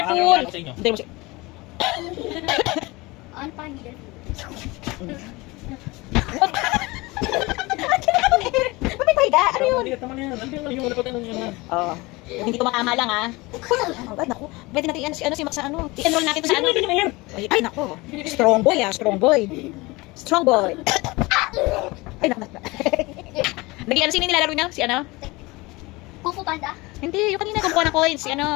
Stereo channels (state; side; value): quieter; right; 22.9 dB